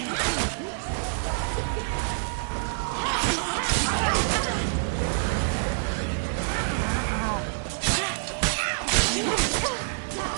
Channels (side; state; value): left; silent; digital silence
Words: Naughty, naughty girl.